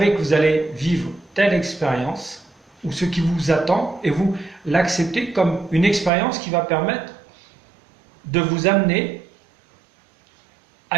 que vous allez vivre telle expérience, ou ce qui vous attend, et vous l'acceptez comme une expérience qui va permettre de vous amener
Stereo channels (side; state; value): left; drops out; at 6.1 s